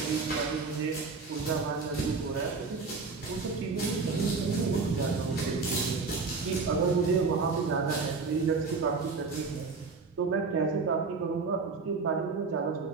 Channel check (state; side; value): quieter; left; 4.5 dB